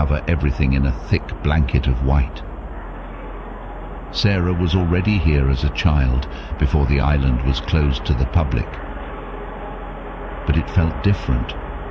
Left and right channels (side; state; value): both; identical; correlation 1.00